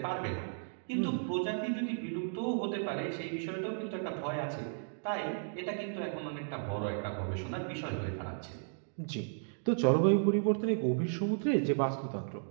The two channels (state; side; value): silent; left; digital silence